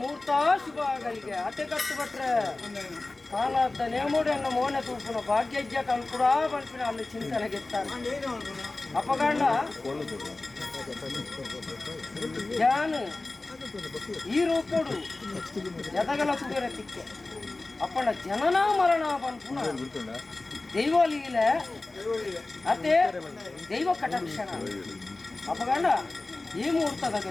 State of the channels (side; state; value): right; quieter; 3.2 dB